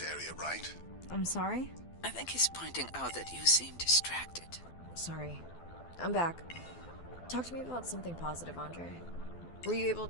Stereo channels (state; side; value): late; right; 12 ms